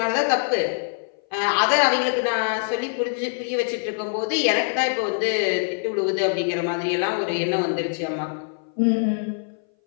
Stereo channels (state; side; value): silent; right; 59 dB below the other